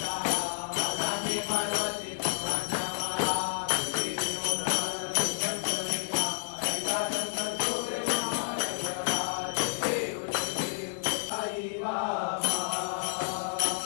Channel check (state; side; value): silent; right; digital silence